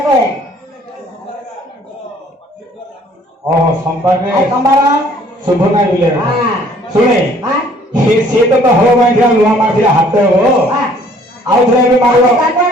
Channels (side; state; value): both; normal; correlation 0.58